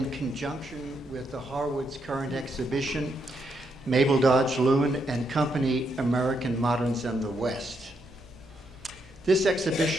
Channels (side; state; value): right; noise; hum, 27 dB below the sound